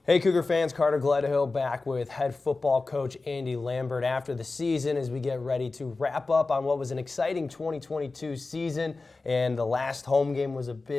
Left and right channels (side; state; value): right; quieter; 3.6 dB